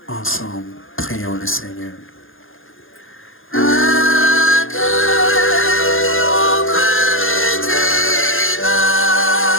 Ensemble, prions le Seigneur.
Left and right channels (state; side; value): late; right; 0.59 ms